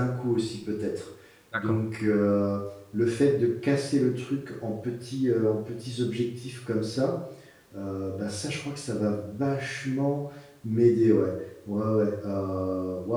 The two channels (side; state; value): both; identical; correlation 1.00